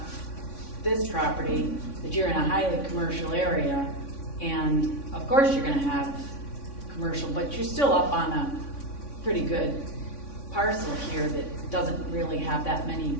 this property that you're in a highly commercial area, and of course you're gonna have commercial, but you're still up on a pretty good parcel here that doesn't really have that many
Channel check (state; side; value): late; right; 3.5 ms